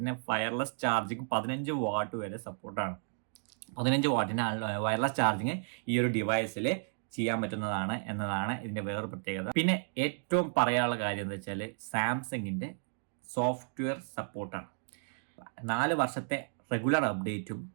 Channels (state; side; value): silent; left; digital silence